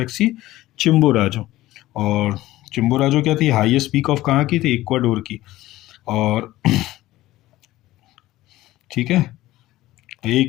Chimborazo. और चिम्बोराजो क्या थी? हाईएस्ट पीक ऑफ कहाँ की थी? इक्वाडोर की। और ठीक है,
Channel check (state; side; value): quieter; right; 16.4 dB